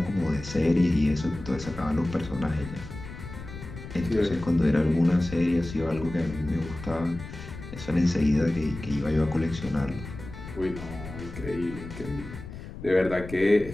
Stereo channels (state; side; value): noise; left; rumble, 12 dB below the sound